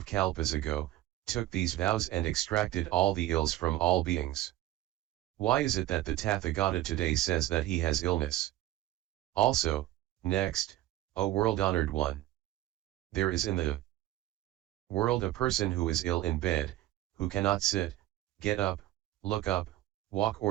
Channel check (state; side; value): quieter; left; 15.2 dB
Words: kalpas ago, took these vows and extracted all the ills from all beings. Why is it that the Tathagata today says that he has illness? Also, next, O world-honored one! There is in the world a person who is ill in bed, who cannot sit, get up, look up, walk